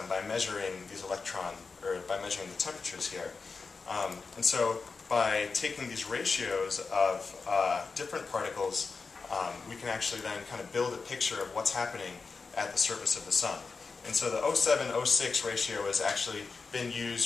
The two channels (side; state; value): right; quieter; 4.6 dB